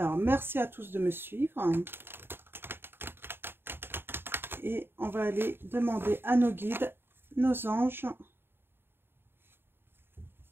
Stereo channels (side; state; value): left; late; 0.11 ms